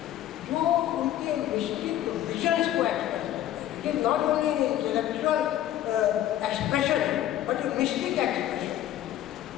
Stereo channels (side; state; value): right; quieter; 12.5 dB